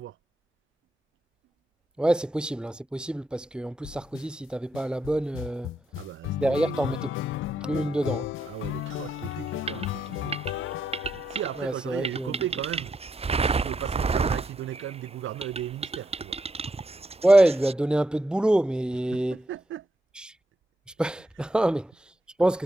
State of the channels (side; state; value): both; normal; correlation 0.81